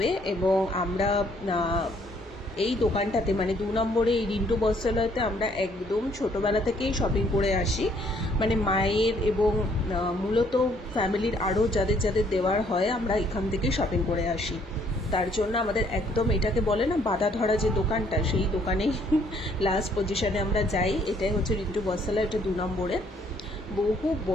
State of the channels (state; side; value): normal; both; correlation 0.65